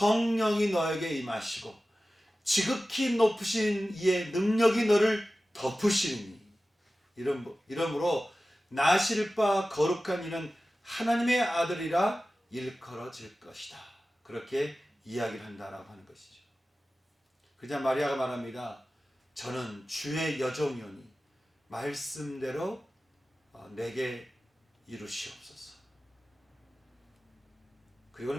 너에게 임하시고 지극히 높으신 이의 능력이 너를 덮으시니 이러므로 나실 바 거룩한 이는 하나님의 아들이라 일컬어질 것이다. 그렇게 이야기를 한다라고 하는 것이죠. 그냥 마리아가 말합니다. 저는 주의 여종이오니 말씀대로 내게 이루시옵소서. 그리고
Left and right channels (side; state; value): both; normal; correlation 0.95